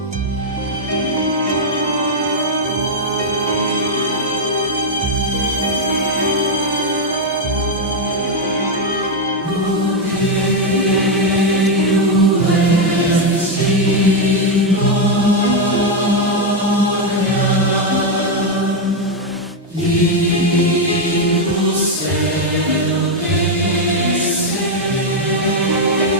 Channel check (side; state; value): both; normal; correlation 0.02